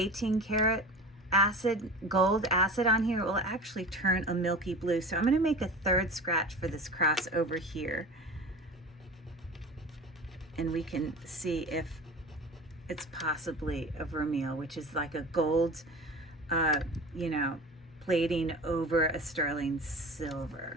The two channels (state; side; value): normal; both; correlation 0.34